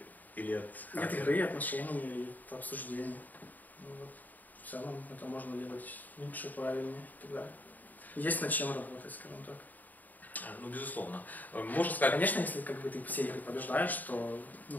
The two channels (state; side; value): late; right; 0.083 ms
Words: или от... От игры, отношений, от обсуждений. Ну, вот. В целом это можно делать лучше, правильнее и так далее. Есть над чем работать, скажем так. Ну, безусловно. Можно сказать... Конечно, если как бы ты все игры побеждаешь, то,